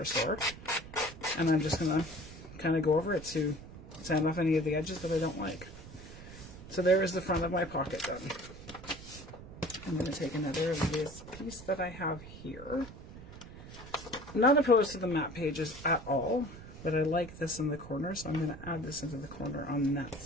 store, and I'm just going to kind of go over it to sand off any of the edges that I don't like. So there is the front of my pocket done. I'm going to take another of this piece that I have here. I'm not opposed to the map pages at all, but I like this in the corner, so I'm going to add this into the corner on that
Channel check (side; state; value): right; noise; rumble, 15 dB below the sound